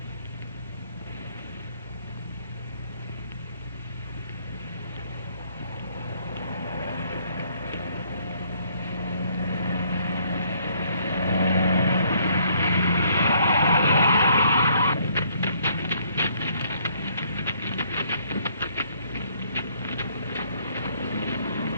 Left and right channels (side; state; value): both; inverted; correlation -0.65